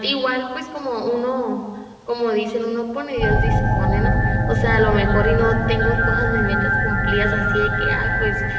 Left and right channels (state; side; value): identical; both; correlation 1.00